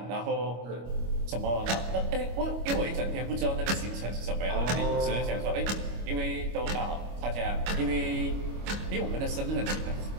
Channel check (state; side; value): late; left; 25 ms